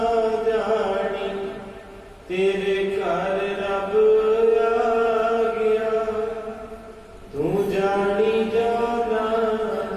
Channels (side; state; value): both; identical; correlation 1.00